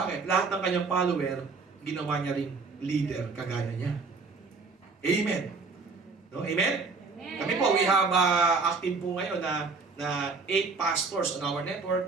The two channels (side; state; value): left; quieter; 4.3 dB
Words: Lahat ng kanyang follower, ginawa niya ring leader kagaya niya. Amen. No? Amen? Kami po, we have active po ngayon na 8 pastors on our